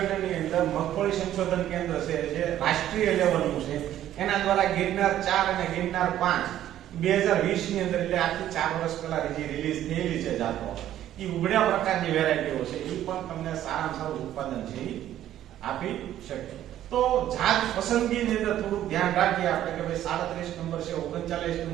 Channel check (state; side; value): quieter; left; 12.2 dB